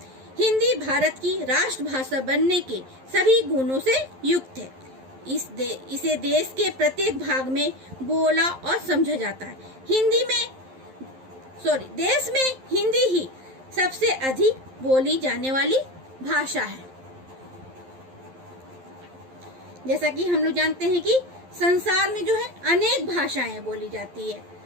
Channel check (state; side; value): late; left; 11 ms